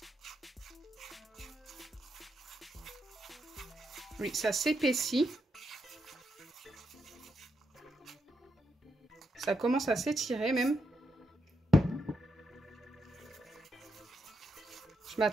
Oui, ça s'épaissit. Ça commence à s'étirer même. Je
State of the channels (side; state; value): both; normal; correlation 0.81